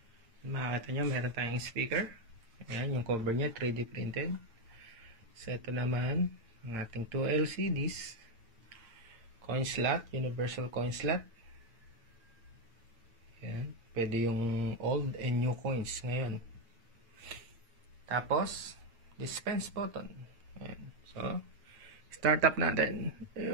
Makikita nyo meron tayong speaker. Ayan, yung cover niya 3D printed. So ito naman ang ating 2 LCDs. Coin slot, universal coin slot. Ayan. Pwede yung old and new coins ngayon. Tapos, dispense button. Ayan. So, start up natin.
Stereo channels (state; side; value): late; left; 8.7 ms